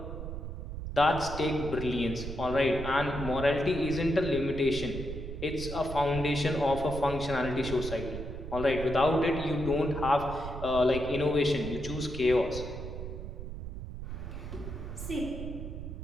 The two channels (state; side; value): noise; right; rumble, 8 dB below the sound